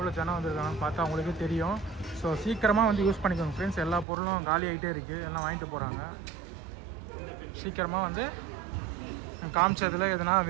ஜனம் வந்திருக்காங்கன்னு பார்த்தா அவங்களுக்கே தெரியும். ஸோ சீக்கிரமாக வந்து யூஸ் பண்ணிக்கோங்க ஃப்ரெண்ட்ஸ். எல்லா பொருளும் காலி ஆகிட்டே இருக்குது, எல்லாம் வாங்கிட்டு போகிறாங்க. சீக்கிரமாக வந்து காமிச்சதில் எதுனா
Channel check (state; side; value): drops out; left; at 4.0 s